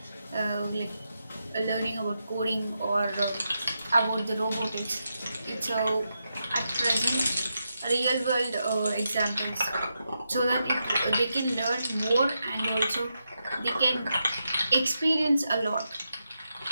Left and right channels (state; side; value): inverted; both; correlation -0.86